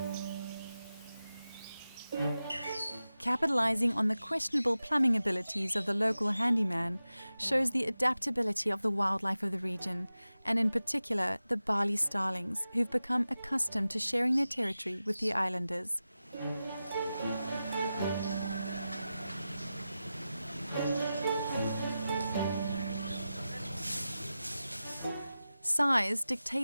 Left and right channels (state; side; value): inverted; both; correlation -0.94